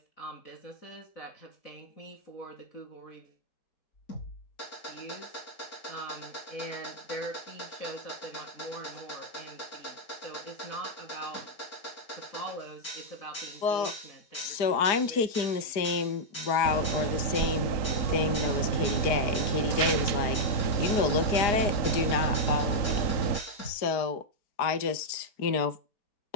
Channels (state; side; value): late; right; 4.9 ms